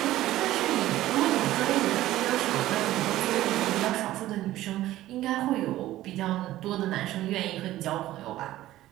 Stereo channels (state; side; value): quieter; left; 15.0 dB